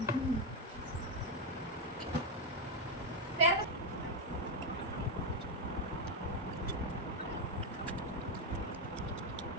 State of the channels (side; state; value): both; normal; correlation 0.05